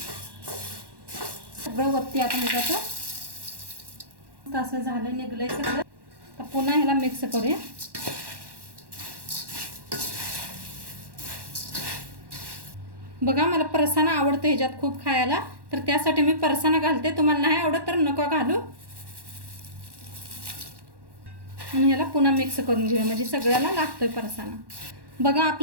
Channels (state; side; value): late; left; 1.1 ms